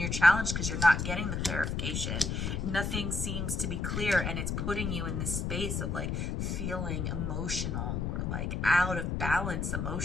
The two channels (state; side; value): noise; left; rumble, 1 dB below the sound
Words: challenged because you're not getting the clarification. Nothing seems to be clear, and it's putting you in this space of like feeling emotional or like out of balance